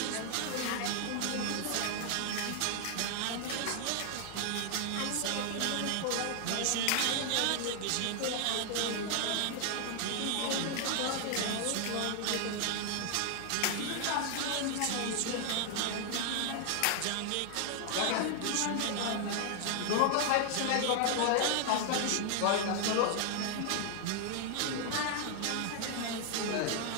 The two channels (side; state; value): both; different; correlation 0.00